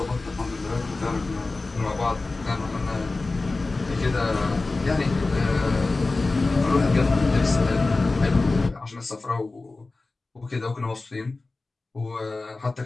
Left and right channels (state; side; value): quieter; right; 3.4 dB